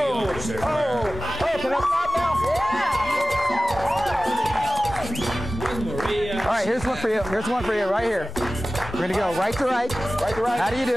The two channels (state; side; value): normal; both; correlation 0.98